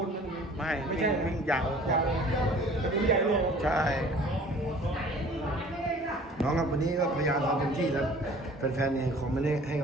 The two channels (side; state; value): both; normal; correlation 0.49